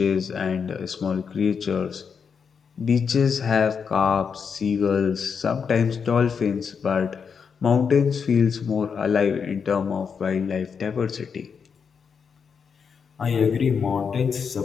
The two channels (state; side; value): quieter; right; 6.3 dB